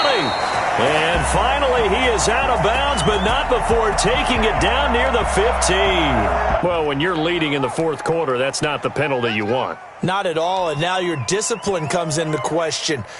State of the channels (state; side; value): identical; both; correlation 1.00